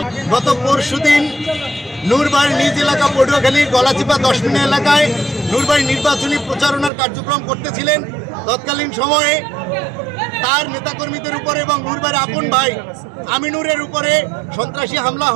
গত পরশুদিন নূরবাড়ি নিজ এলাকা পটুয়াখালী গলাচিপা 10 মিনিট এলাকায় নূরবাড়ি নির্বাচনী প্রচারণার কার্যক্রম করতেছিলেন। তৎকালীন সময়ে তার নেতাকর্মীদের উপরে এবং নূরবাড়ি আপন ভাই আমিনুরের উপরে সন্ত্রাসী হামলা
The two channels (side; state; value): left; drops out; at 6.9 s